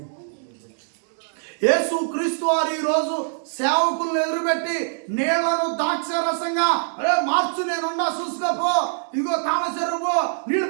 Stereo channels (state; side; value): silent; left; 63 dB below the other